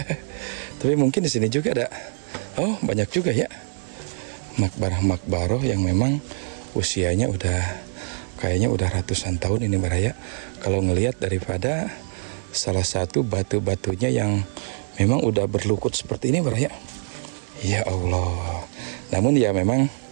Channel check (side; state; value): left; silent; digital silence